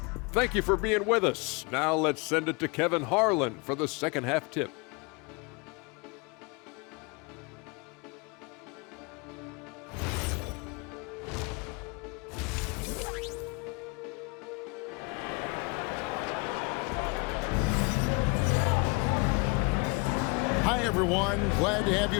Thank you for being with us. Now let's send it to Kevin Harlan for the second half tip. Hi, everyone. Glad to have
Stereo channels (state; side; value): quieter; right; 28.9 dB